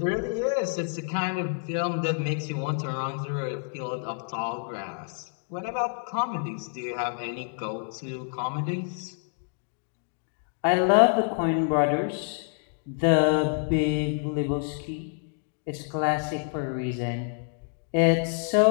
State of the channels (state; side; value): silent; right; 60 dB below the other